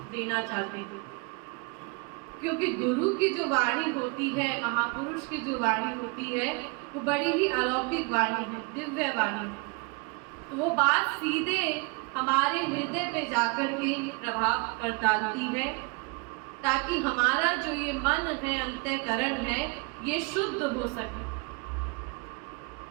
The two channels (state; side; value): quieter; left; 30.6 dB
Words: देना चाहते हैं। क्योंकि गुरु की जो वाणी होती है, महापुरुष की जो वाणी होती है, वो बड़ी ही अलौकिक वाणी है, दिव्य वाणी है। तो वो बात सीधे हमारे हृदय पे जाकर के प्रभाव कर डालती है, ताकि हमारा जो ये मन है, अंतःकरण है, ये शुद्ध हो सके।